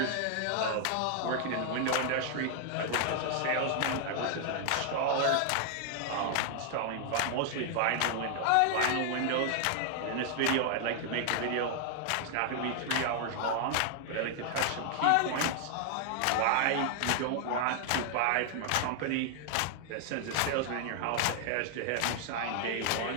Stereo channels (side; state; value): both; different; correlation 0.00